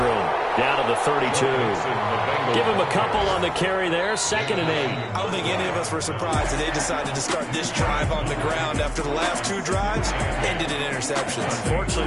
Down to the 32. Give him a couple on the carry there. 2nd and 8. I don't think any of us were surprised that they decided to start this drive on the ground after the last 2 drives ended in interceptions.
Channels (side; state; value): both; identical; correlation 1.00